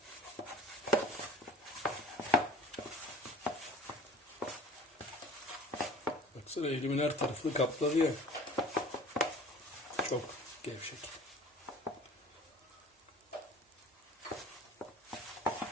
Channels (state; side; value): normal; both; correlation 0.44